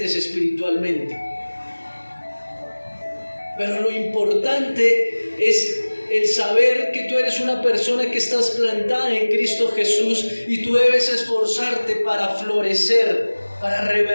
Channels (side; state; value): both; inverted; correlation -1.00